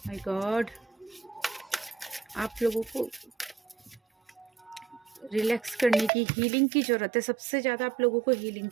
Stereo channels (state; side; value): drops out; left; at 6.1 s